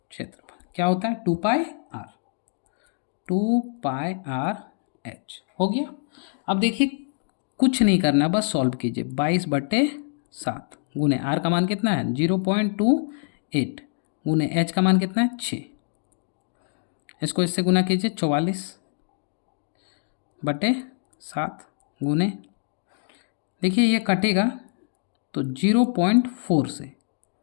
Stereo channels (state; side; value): silent; right; digital silence